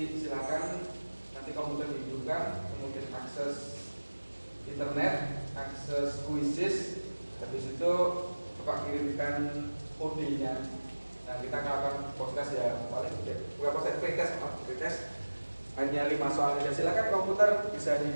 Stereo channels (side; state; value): both; inverted; correlation -1.00